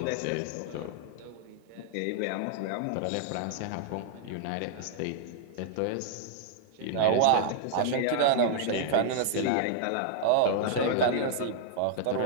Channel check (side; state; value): both; different; correlation -0.01